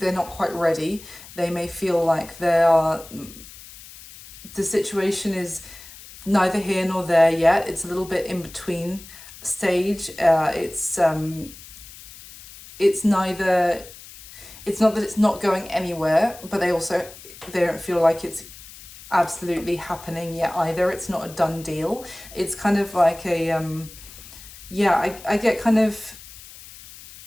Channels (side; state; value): left; noise; hiss, 18 dB below the sound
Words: not quite ready. They may feel like the situation is neither here nor there yet. It's a little bit in between stage. It's neither, it's not that it's not going anywhere, but they don't feel like it's absolutely happening yet either. It's not a done deal. It's kind of like a I get kind of